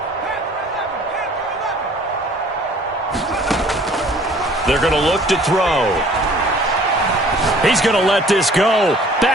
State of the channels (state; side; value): normal; both; correlation 0.53